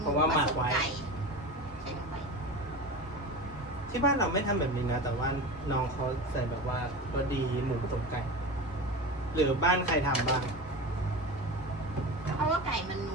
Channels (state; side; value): normal; both; correlation 0.28